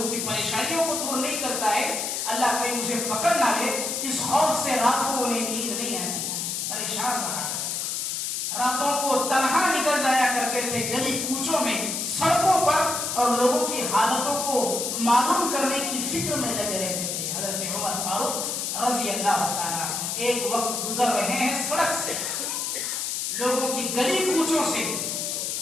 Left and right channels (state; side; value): noise; left; hiss, 2 dB below the sound